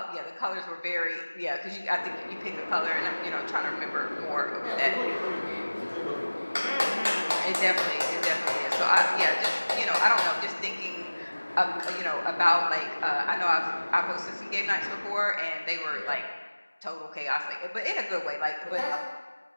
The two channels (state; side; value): inverted; both; correlation -1.00